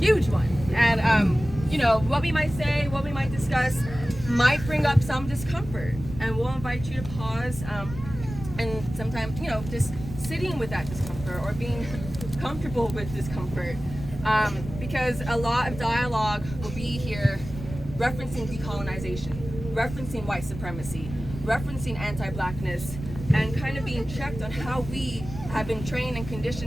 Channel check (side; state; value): right; noise; rumble, 11 dB below the sound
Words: one. And, what we might say, what we might discuss might bring up some discomfort. And we'll invite you to pause and sometimes, just sitting with that discomfort or being comfortable with discomfort. Because a lot of dialogue will be here referencing decolonization, referencing white supremacy, referencing anti-blackness, and kind of being checked on how we have been trained and